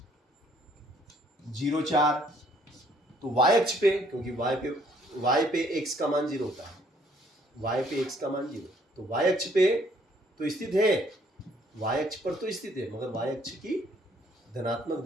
0 4 तो y अक्ष पे, क्योंकि y पे x का मान 0 होता है, y पे x का मान 0, तो y अक्ष पे तो स्थित है, y अक्ष पर तो स्थित है मगर y अक्ष की धनात्मक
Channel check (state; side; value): normal; both; correlation 0.64